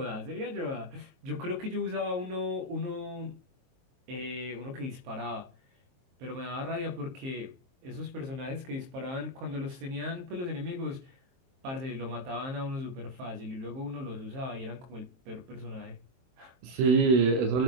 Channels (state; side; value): late; left; 23 ms